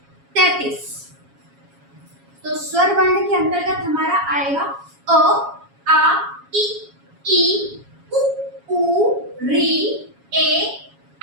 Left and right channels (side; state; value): left; late; 7.2 ms